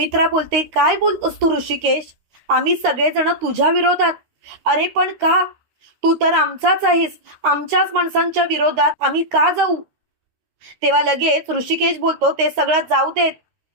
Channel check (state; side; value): late; left; 13 ms